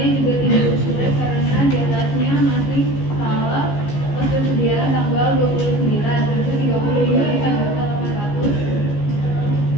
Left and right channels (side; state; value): right; late; 15 ms